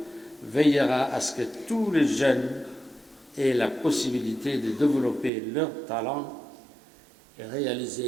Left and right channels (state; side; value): drops out; left; at 5.3 s